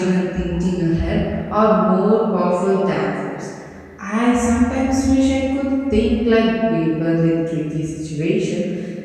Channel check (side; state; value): both; identical; correlation 1.00